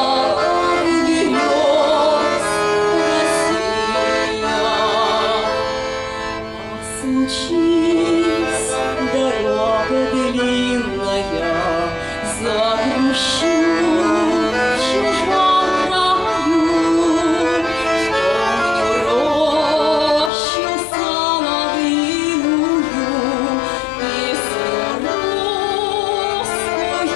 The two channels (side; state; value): right; drops out; at 20.3 s